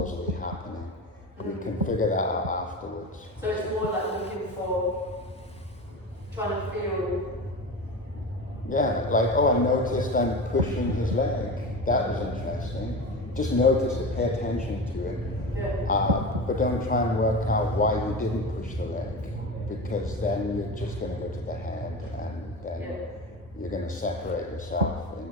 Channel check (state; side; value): normal; both; correlation 0.27